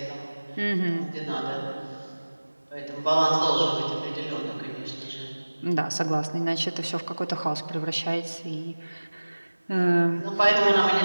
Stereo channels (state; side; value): inverted; both; correlation -1.00